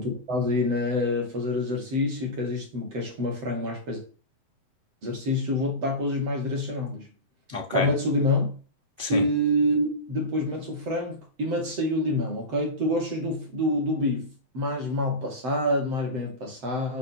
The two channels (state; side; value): late; left; 7.8 ms